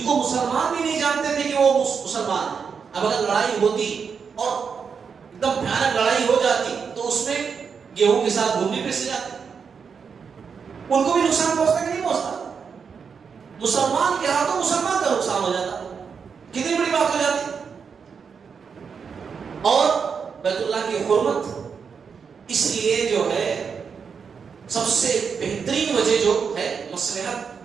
کو مسلمان بھی نہیں جانتے تھے کہ وہ مسلمان ہیں. اب اگر لڑائی ہوتی اور ایک دم بھیانک لڑائی ہو جاتی تو اس میں گیہوں کے ساتھ گھومنے پہ سے جاتے، ان کو بھی نقصان پہنچتا کہ نہیں پہنچتا. مسلمان کے ہاتھوں مسلمان کا نقصان ہو جاتا، کتنی بڑی بات ہو جاتی. اور بیت اللہ کی حرمت، اس لیے جو ہے سب سے بہترین وجہ جو ہے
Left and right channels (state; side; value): quieter; left; 6.1 dB